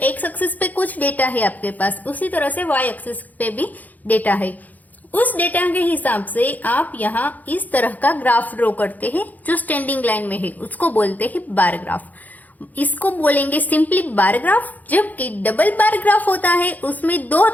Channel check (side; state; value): right; late; 0.080 ms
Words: एक्सिस पे कुछ डेटा है आपके पास, उसी तरह से वाई एक्सिस पे भी डेटा है। उस डेटा के हिसाब से आप यहाँ इस तरह का ग्राफ ड्रॉ करते हैं जो स्टैंडिंग लाइन में है, उसको बोलते हैं बार ग्राफ। इसको बोलेंगे सिंपली बार ग्राफ। जबकि डबल बार ग्राफ होता है उसमें 2